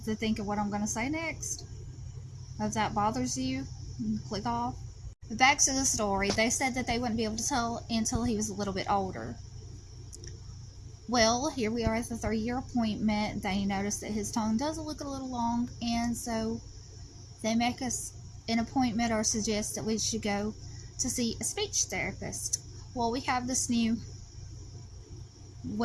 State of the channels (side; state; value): both; identical; correlation 1.00